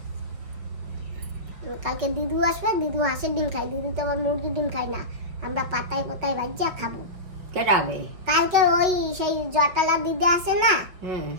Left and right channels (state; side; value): late; left; 5.4 ms